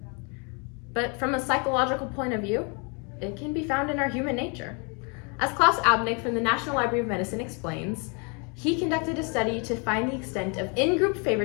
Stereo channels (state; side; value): quieter; right; 34.5 dB